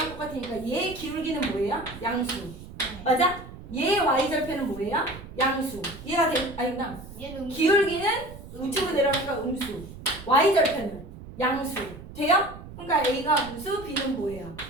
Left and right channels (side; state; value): right; noise; rumble, 15 dB below the sound